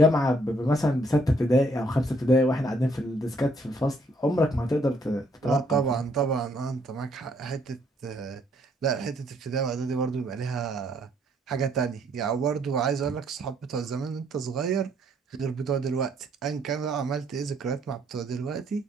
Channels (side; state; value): both; normal; correlation 0.68